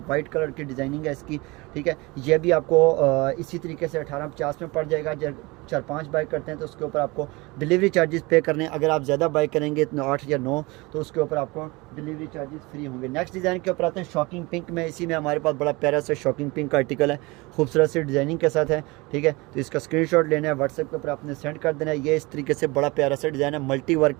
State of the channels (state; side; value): quieter; left; 24.2 dB